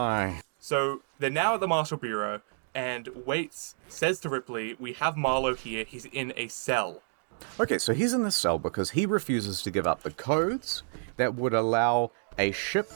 So they're now at the Marshal Bureau, and Waits says to Ripley, we have Marlowe here, he's in a cell. Okay, so he's in the cell because he refuses to give up the codes that would allow a ship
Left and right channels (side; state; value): left; silent; digital silence